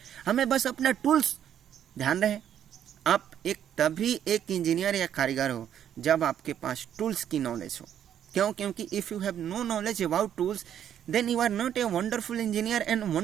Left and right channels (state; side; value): quieter; left; 9.8 dB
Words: हमें बस अपना टूल्स ध्यान रहे। आप एक तभी एक इंजीनियर या कारीगर हो जब आपके पास टूल्स की नॉलेज हो। क्यों? क्योंकि if you have no knowledge about tools then you are not a wonderful engineer and